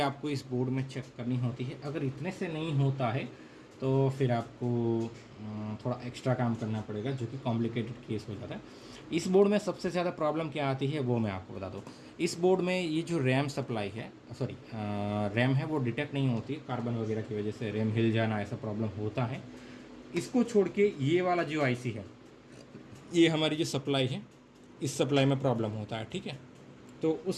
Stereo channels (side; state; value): both; identical; correlation 1.00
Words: इस बोर्ड में चेक करनी होती है। अगर इतने से नहीं होता है तो फिर आपको थोड़ा एक्स्ट्रा काम करना पड़ेगा, जो कि कॉम्प्लिकेटेड केस हो जाता है। इस बोर्ड में सबसे ज़्यादा प्रॉब्लम क्या आती है वो मैं आपको बता दूँ। इस बोर्ड में ये जो रैम सप्लाई है, सॉरी रैम है, वो डिटेक्ट नहीं होती कार्बन वगैरह की वजह से, रैम हिल जाना ऐसा प्रॉब्लम होता है। इसको छोड़ के ये वाला जो आईसी है, ये हमारी जो सप्लाई है, इस सप्लाई में प्रॉब्लम होता है, ठीक है। तो